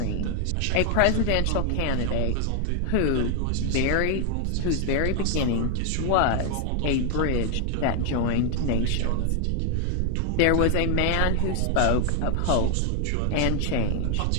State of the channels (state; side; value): different; both; correlation 0.00